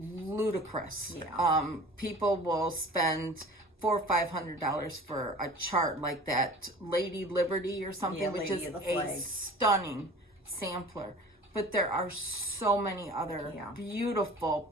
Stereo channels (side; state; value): both; normal; correlation 0.42